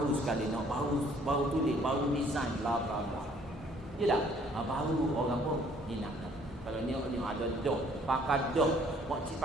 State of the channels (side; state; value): both; normal; correlation 0.60